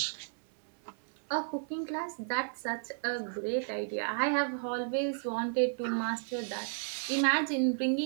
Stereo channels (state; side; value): silent; left; digital silence